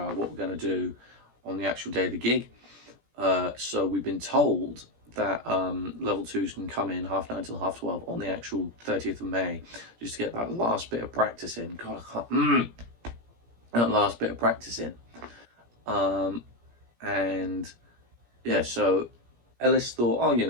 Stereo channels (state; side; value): late; left; 17 ms